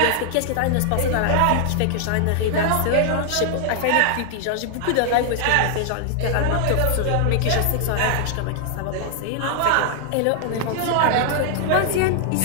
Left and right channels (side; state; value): both; different; correlation 0.00